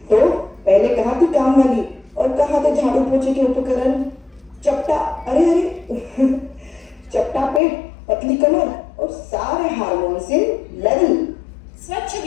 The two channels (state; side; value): drops out; right; at 7.6 s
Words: तो पहले कहाँ थी काम वाली और कहाँ थे झाड़ू पोछे के उपकरण? चपटा, अरे चपटा पेट, पतली कमर और सारे हार्मोन्स इन लेवल। स्वच्छ